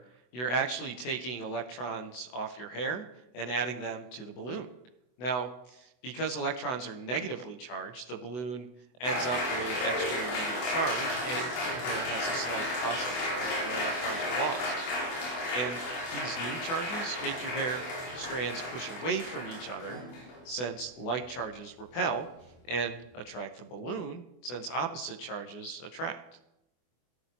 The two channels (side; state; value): right; late; 24 ms